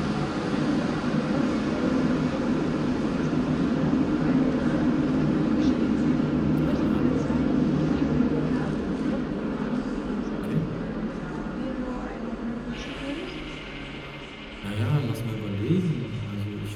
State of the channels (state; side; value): identical; both; correlation 1.00